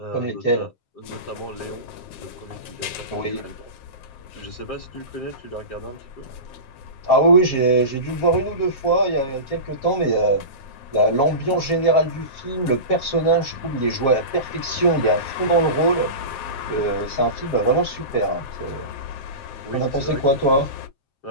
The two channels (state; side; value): late; right; 7.6 ms